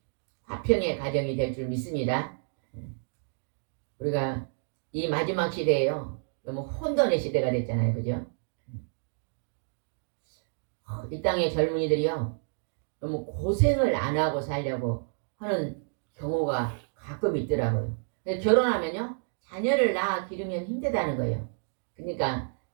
화평의 가정이 될 줄 믿습니다. 우리가 이 마지막 시대에요 너무 혼돈의 시대가 됐잖아요. 그죠? 이 땅의 젊은이들이요 너무 고생을 안 하고 살려고 하는 경우가 가끔 있더라고요. 결혼하면요 자녀를 낳아 기르면 힘들다는 거예요. 그러니까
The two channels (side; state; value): left; silent; digital silence